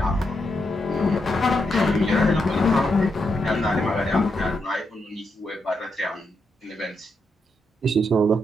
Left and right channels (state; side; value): normal; both; correlation 0.82